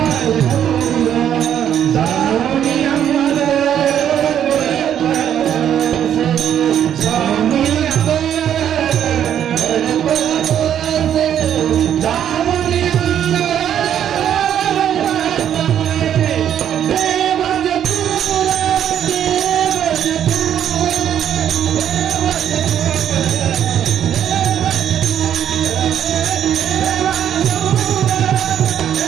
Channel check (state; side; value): quieter; left; 9.8 dB